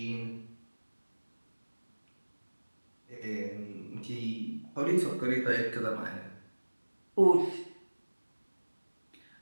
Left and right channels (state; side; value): inverted; both; correlation -1.00